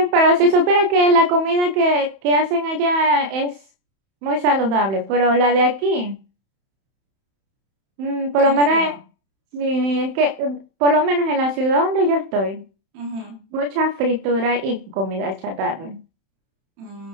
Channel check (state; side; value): late; left; 31 ms